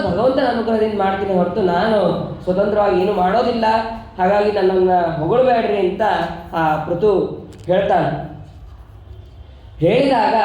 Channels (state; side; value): identical; both; correlation 1.00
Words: ಭಗವಂತನ ಅನುಗ್ರಹದಿಂದ ಮಾಡ್ತೀನಿ ಹೊರತು ನಾನು ಸ್ವತಂತ್ರವಾಗಿ ಏನು ಮಾಡೋದಿಲ್ಲ. ಹಾಗಾಗಿ ನನ್ನನ್ನು ಹೊಗಳಬೇಡ್ರಿ ಅಂತ ಆ ಪೃಥು ಹೇಳ್ತಾನೆ. ಹೇಳಿದಾಗ